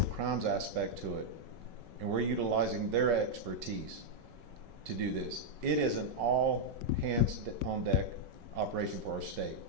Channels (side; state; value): left; late; 5.3 ms